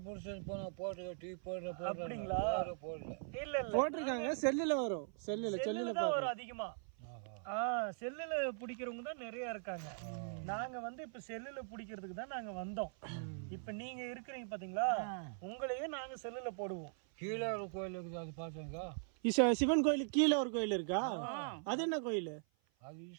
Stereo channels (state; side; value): silent; left; 51 dB below the other